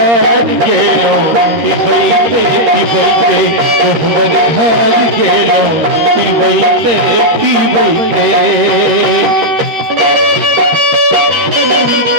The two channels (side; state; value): left; late; 13 ms